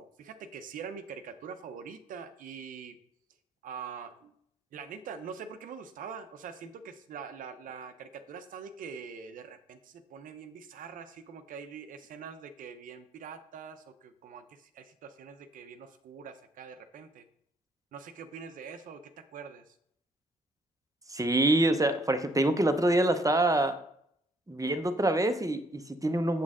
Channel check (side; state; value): both; normal; correlation 0.66